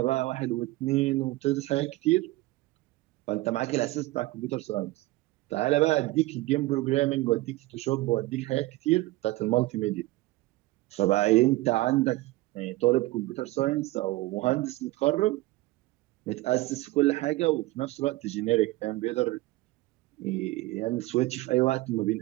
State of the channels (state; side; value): quieter; left; 19.3 dB